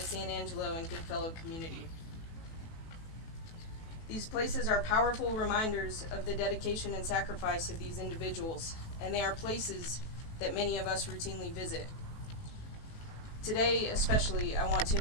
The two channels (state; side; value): late; right; 18 ms